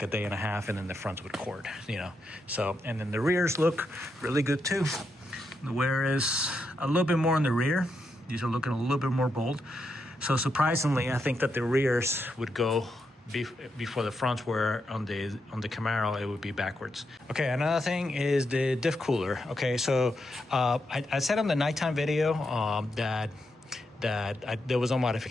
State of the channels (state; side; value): normal; both; correlation 0.83